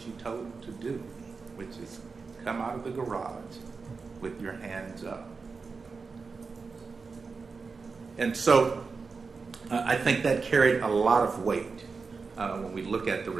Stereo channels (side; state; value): left; quieter; 4.7 dB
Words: you told him to do, which is come out of the garage with your hands up. And so I think that carried a lot of weight when we look at the